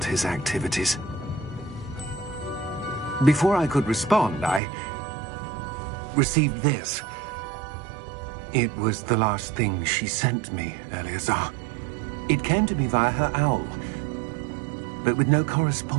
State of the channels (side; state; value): left; drops out; at 4.6 s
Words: his activities. Before I could respond, I received this. It was the last thing she sent me, Eleazar. It came to me via her owl, but with no